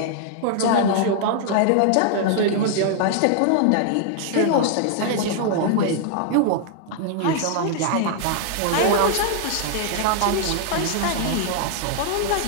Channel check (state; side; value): different; both; correlation -0.01